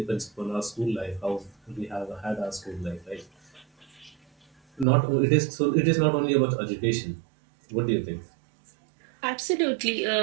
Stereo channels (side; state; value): left; drops out; at 4.9 s